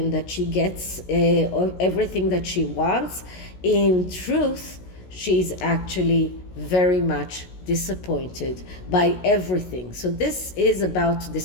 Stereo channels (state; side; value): late; right; 16 ms